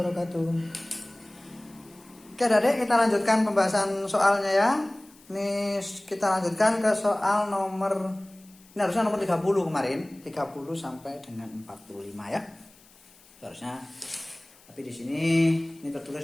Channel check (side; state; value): left; noise; hiss, 27 dB below the sound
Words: Oke Adik, kita lanjutkan pembahasan soalnya ya. Ini kita lanjutkan ke soal nomor, ini harusnya nomor 30 kemarin, 30 sampai dengan 45 ya. Harusnya. Tapi di sini ini